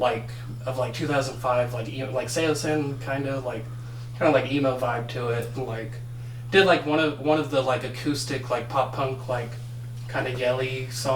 2005, like Seosin kind of like emo vibe to it. Like did like one of the like acoustic like pop punk like kind of yelly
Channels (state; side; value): identical; both; correlation 1.00